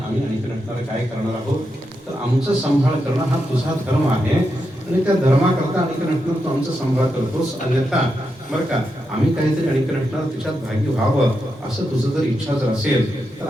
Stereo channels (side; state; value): both; normal; correlation 0.85